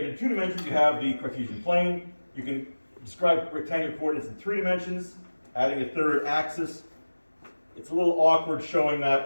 in two dimensions, you have the Cartesian plane. You can describe rectangular coordinates in three dimensions, adding a third axis. It's a little awkward showing that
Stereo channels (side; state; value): both; inverted; correlation -1.00